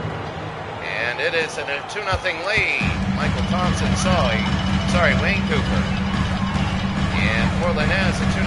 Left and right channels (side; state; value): both; identical; correlation 1.00